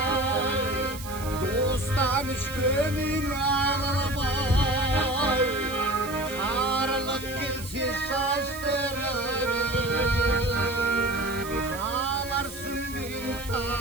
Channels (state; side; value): noise; right; hiss, 13 dB below the sound